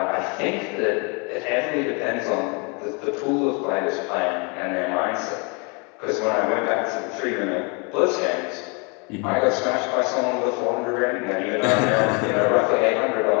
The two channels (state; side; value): quieter; right; 32.8 dB